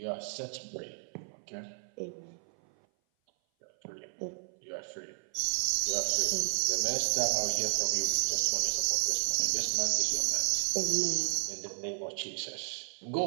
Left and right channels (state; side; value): silent; left; 56 dB below the other